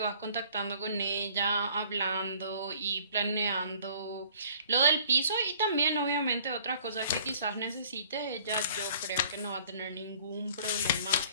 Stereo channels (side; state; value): both; inverted; correlation -0.55